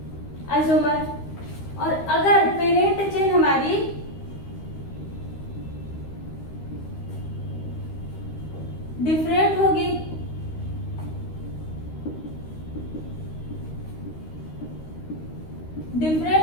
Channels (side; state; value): right; late; 13 ms